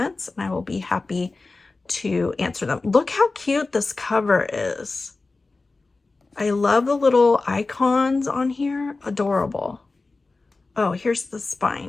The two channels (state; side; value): quieter; right; 3.6 dB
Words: and I will be happy to answer them. Look how cute this cover is. I love the little icons on here. Adorable. Oh, here's the